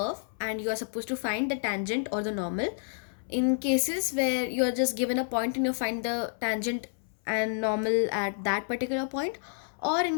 and you are supposed to find the tangent or the normal. In cases where you're just given a point and you find the tangent and normal at that particular point, or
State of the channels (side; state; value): right; silent; 58 dB below the other